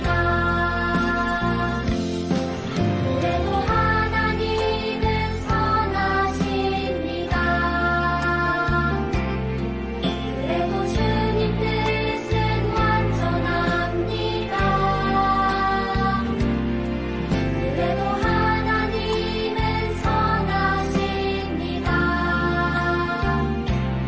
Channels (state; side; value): identical; both; correlation 1.00